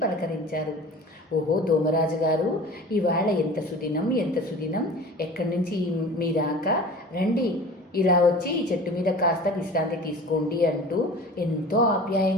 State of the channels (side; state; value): both; normal; correlation 0.40